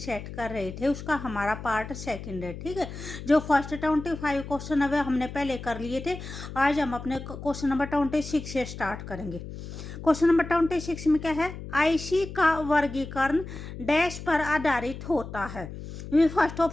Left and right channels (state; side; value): noise; left; hum, 10 dB below the sound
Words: सेट कर रहे थे उसका हमारा पार्ट सेकंड है। ठीक है, जो फर्स्ट 25 क्वेश्चन है वे हमने पहले कर लिए थे। आज हम अपने क्वेश्चन नंबर 26 से स्टार्ट करेंगे। क्वेश्चन नंबर 26 में क्या है? IC का वर्गीकरण डैश पर आधारित होता है। फर्स्ट